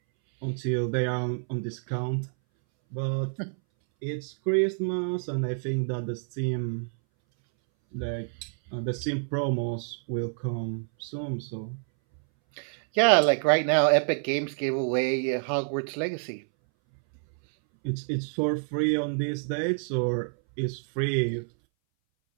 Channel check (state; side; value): silent; left; 60 dB below the other